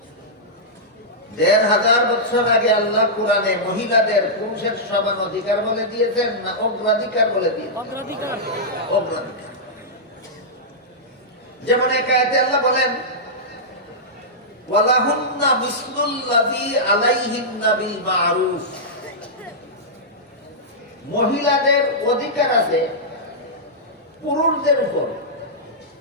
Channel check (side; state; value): both; normal; correlation -0.11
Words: ১৫০০ বছর আগে আল্লাহ কোরআনে মহিলাদের পুরুষের সমান অধিকার বলে দিয়েছেন না অগ্রাধিকার বলে দিয়েছেন? অগ্রাধিকার। যেমন এক আয়াতে আল্লাহ বলেন, ওয়ালাহুন্না মিসলুল্লাযী আলাইহিন্না বিল মা'রুফ। মহিলাদের অধিকার আছে পুরুষদের উপর,